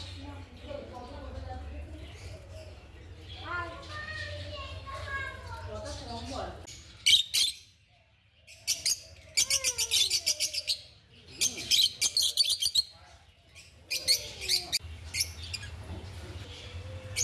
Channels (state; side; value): identical; both; correlation 1.00